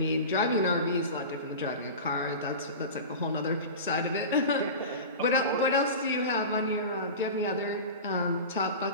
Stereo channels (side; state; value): both; inverted; correlation -0.30